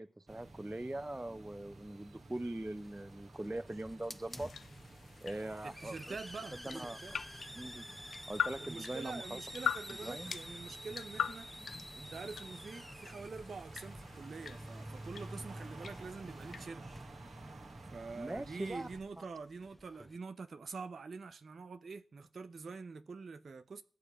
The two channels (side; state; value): both; normal; correlation 0.85